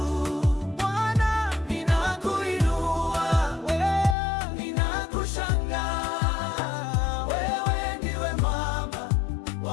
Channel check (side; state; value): right; drops out; at 4.2 s